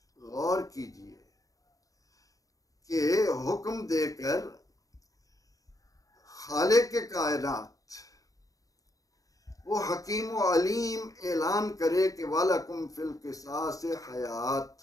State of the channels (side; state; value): right; late; 0.17 ms